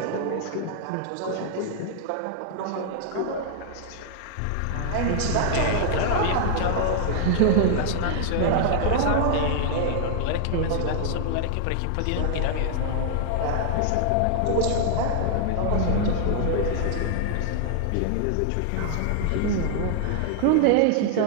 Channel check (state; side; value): different; both; correlation 0.00